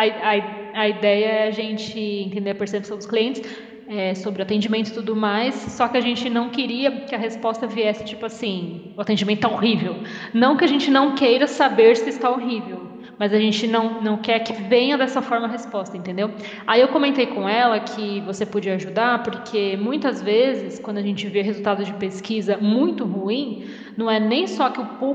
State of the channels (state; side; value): identical; both; correlation 1.00